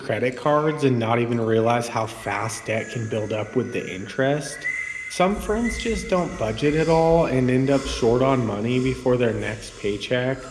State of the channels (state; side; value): identical; both; correlation 1.00